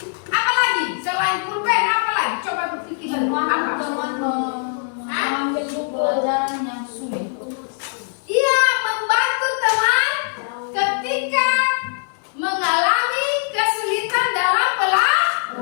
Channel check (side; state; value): right; silent; digital silence